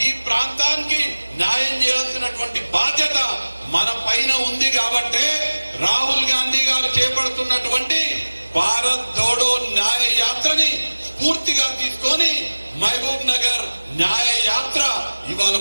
ఈ ప్రాంతానికి న్యాయం చేయాల్సినటువంటి బాధ్యత మన పైన ఉంది. కాబట్టి రాహుల్ గాంధీ గారు చేపడుతున్నటువంటి భారత్ జోడో న్యాయ యాత్రని స్ఫూర్తిగా తీసుకొని మహబూబ్ నగర్ న్యాయ యాత్ర ఇవాళ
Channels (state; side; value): inverted; both; correlation -1.00